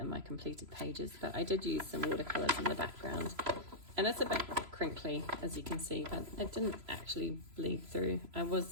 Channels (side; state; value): left; late; 3.0 ms